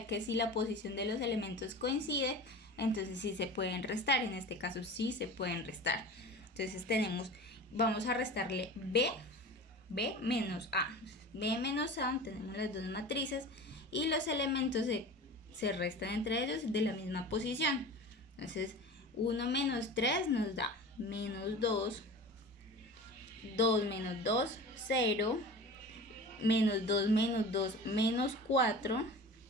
que si la posición de los elementos coincide, entonces sí se pueden restar. En este caso sí se pueden restar. Entonces vamos a restarle B menos A. B menos A, tenemos las dos matrices y los elementos se restan entre ellos de la misma posición. Entonces 1 menos 3 nos da menos 2, 2 menos 2, 0, menos 2 menos 2, menos 4,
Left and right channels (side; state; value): both; normal; correlation 0.35